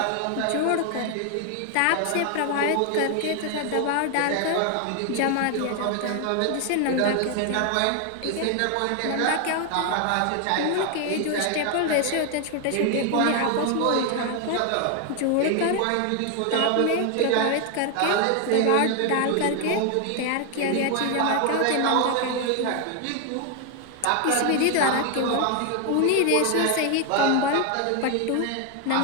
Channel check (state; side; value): different; both; correlation 0.00